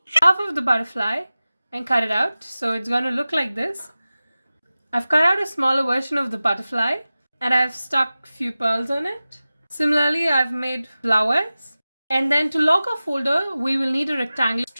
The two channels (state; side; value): inverted; both; correlation -0.96